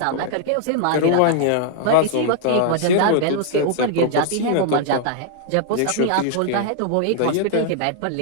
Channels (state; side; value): different; both; correlation -0.01